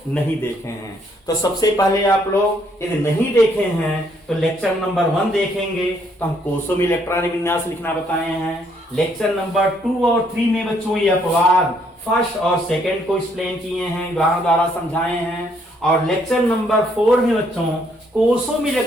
नहीं देखे हैं। तो सबसे पहले आप लोग यदि नहीं देखे हैं तो लेक्चर नंबर 1 देखेंगे। तो हम कोषों में इलेक्ट्रॉनिक विन्यास लिखना बताए हैं। लेक्चर नंबर 2 और 3 में बच्चों ये अपवाद फर्स्ट और सेकंड को एक्सप्लेन किए हैं, उदाहरण द्वारा समझाए हैं। और लेक्चर नंबर 4 में बच्चों कोषों में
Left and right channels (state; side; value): normal; both; correlation 0.69